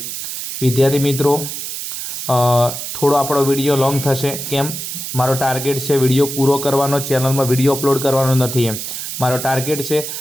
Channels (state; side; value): noise; right; hiss, 6 dB below the sound